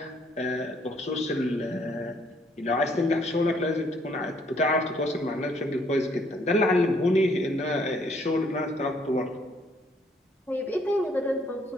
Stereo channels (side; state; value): both; normal; correlation 0.66